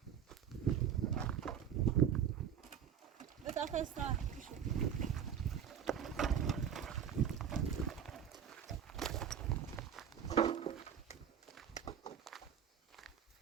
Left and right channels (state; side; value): quieter; left; 8.4 dB